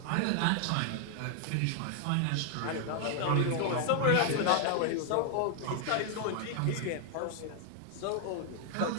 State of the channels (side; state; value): both; different; correlation 0.00